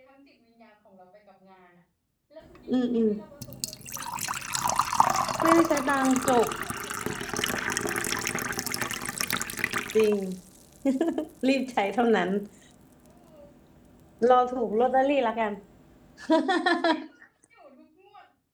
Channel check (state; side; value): identical; both; correlation 1.00